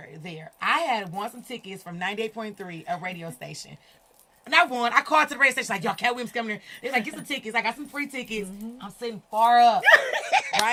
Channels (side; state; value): both; identical; correlation 1.00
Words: there. I had won some tickets from 98.3, a radio station. And I won. I called to the radio station like, yo, Katt Williams coming here. They're like, get some tickets. I got some free tickets. Mm-hmm. I'm sitting far up,